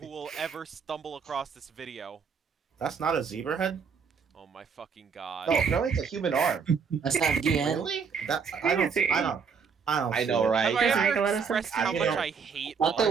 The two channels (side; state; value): left; quieter; 6.0 dB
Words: will ever stumble across this video. That's not a zebra head? Oh my fucking god. No, no, it's a human arm. That's not DN. Really? That I don't Crazy. I don't I see know, it. right? Have I Doesn't make ever a lot of expressed sense. how I much know. I hate I thought that